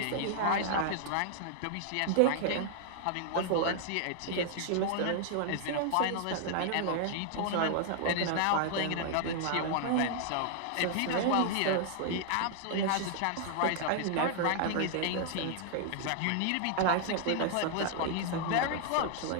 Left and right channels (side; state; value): both; different; correlation 0.00